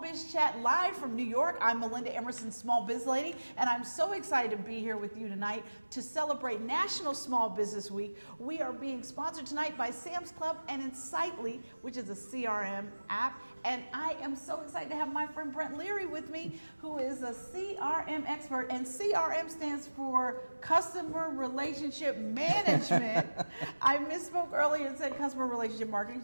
live from New York. I'm Melinda, Emerson, SmallBizLady, and I'm so excited to be here with you tonight to celebrate National Small Business Week. We are being sponsored tonight by Sam's Club and Insightly, which is a CRM app. And I am so excited to have my friend Brent Leary with me, who is a CRM expert. And CRM stands for Customer Relationship Management. I misspoke earlier and said Customer Relationship Marketing.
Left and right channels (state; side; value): inverted; both; correlation -1.00